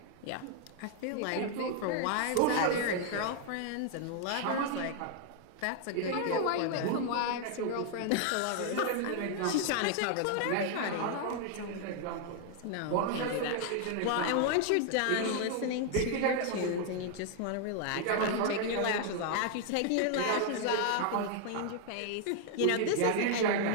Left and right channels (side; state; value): both; different; correlation 0.00